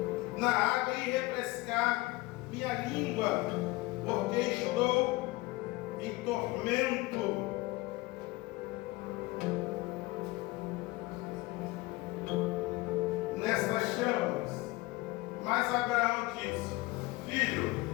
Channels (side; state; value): right; quieter; 20.8 dB